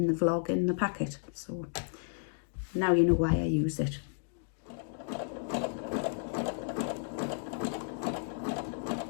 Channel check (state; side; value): silent; right; digital silence